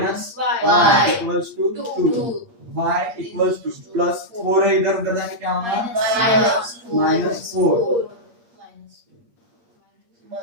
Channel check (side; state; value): left; late; 8.6 ms